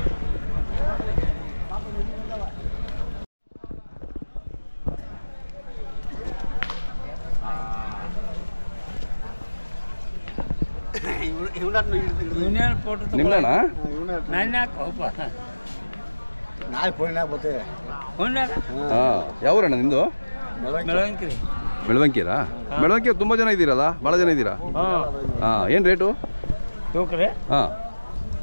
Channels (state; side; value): inverted; both; correlation -1.00